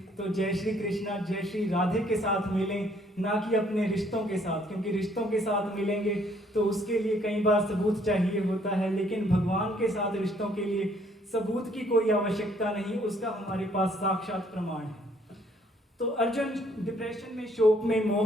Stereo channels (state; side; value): normal; both; correlation 0.64